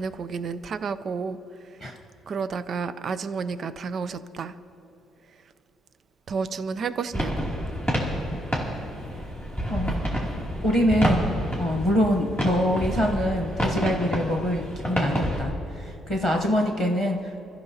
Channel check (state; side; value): normal; both; correlation 0.76